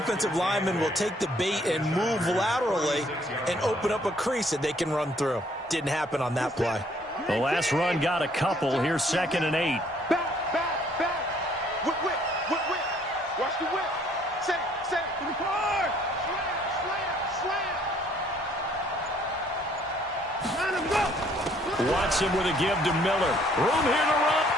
lineman will take the bait and move laterally and open up a crease that they can run through. Didn't happen on that play. The last run got a couple. Here's 2nd and 8. Back. Whip. Watch the whip. Watson with a give to Miller. Room here to run.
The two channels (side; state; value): both; normal; correlation 0.63